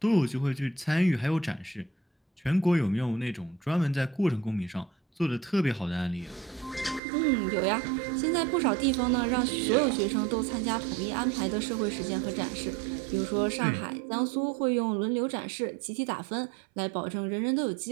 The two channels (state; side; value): drops out; left; at 7.0 s